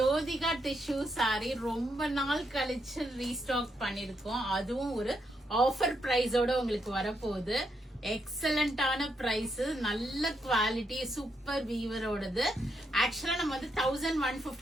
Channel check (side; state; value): both; normal; correlation 0.79